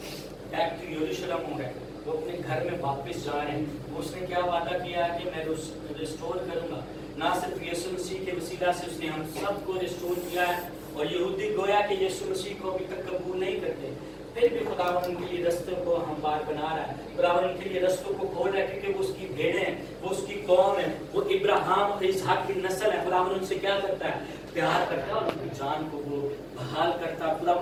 बैक टू यरूशलेम हो गए, वो अपने घर में वापस जा रहे हैं। उसने क्या वादा किया है कि मैं रिस्टोर करूंगा। ना सिर्फ यीशु मसीह के वसीला से उसने हम सबको रिस्टोर किया है और यहूदी गोया कि यीशु मसीह को अभी तक कबूल नहीं करते, फिर भी खुदावन उनके लिए रस्तों को हमवार बना रहा है। खुदावन उनके लिए रस्तों को खोल रहा है क्योंकि वो उसकी भेड़ें हैं, वो उसकी कौम है, वो इब्राहिम और इसहाक की नस्ल है। खुदावन उनसे क्या करता है? प्यार करता है और उनकी जान को वो बहाल करता है।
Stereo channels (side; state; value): both; identical; correlation 1.00